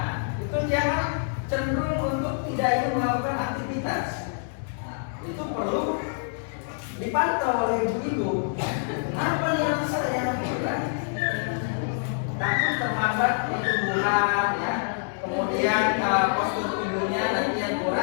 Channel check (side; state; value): right; silent; digital silence